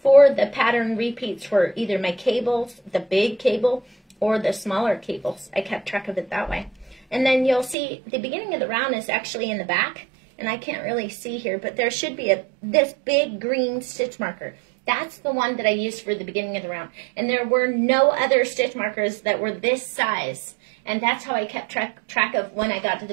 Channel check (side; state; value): left; drops out; at 7.8 s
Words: for the pattern repeats for either my cables, the big cable, or the smaller cables. I kept track of it that way. And then you'll see the beginning of the round is actually in the back, and I can't really see here, but there should be this big green stitch marker. That's the one that I used for the beginning of the round. And there were no other stitch markers that were this size. And that's how I kept track of when I got to the